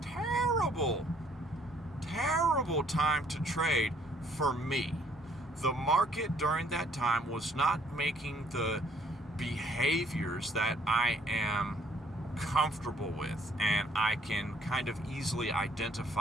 terrible time to trade for me. The market during that time was not making the behaviors that I am comfortable with, and I can kind of easily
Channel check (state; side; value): normal; both; correlation 0.63